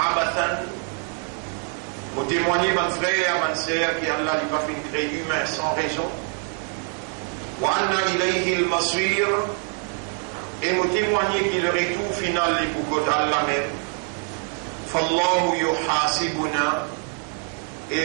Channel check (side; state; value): left; quieter; 39.5 dB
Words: Pour témoigner, mon frère, mon sœur, qu'Allah n'a pas fait créer humain sans raison. وأن إليه المصير. Et me témoigner qu'il le retour final est pour Allah même. فالله يحاسبنا. Et